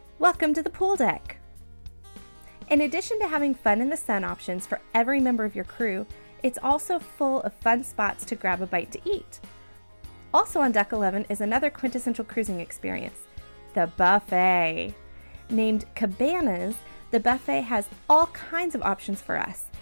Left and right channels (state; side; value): inverted; both; correlation -1.00